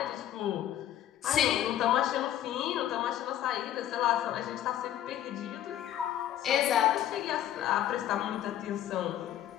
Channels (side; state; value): right; quieter; 11.7 dB